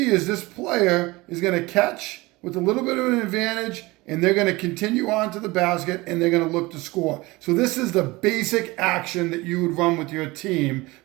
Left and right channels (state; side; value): quieter; left; 21.8 dB